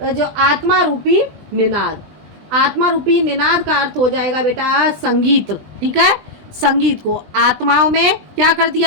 जो आत्मा रूपी निनाद, आत्मा रूपी निनाद का अर्थ हो जाएगा बेटा संगीत। ठीक है। संगीत को आत्माओं में क्या कर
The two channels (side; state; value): left; late; 20 ms